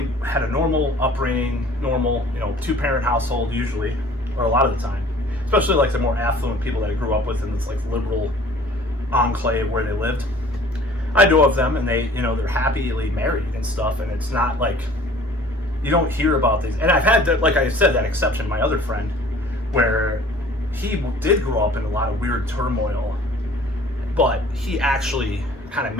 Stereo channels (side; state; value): both; normal; correlation 0.50